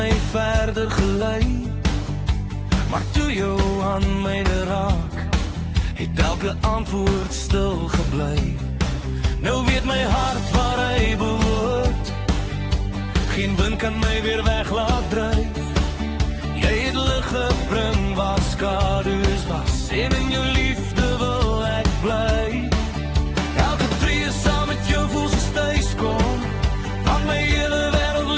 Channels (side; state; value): both; identical; correlation 1.00